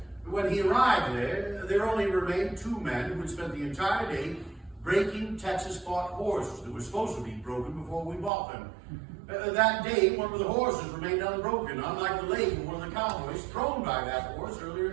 When he arrived there only remained 2 men who had spent the entire day breaking Texas-bought horses that were supposed to be broken before we bought them. That day, one of the horses remained unbroken, unlike the leg of one of the cowboys thrown by that horse earlier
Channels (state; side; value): drops out; left; at 8.3 s